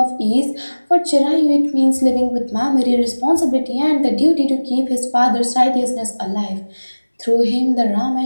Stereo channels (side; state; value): both; inverted; correlation -1.00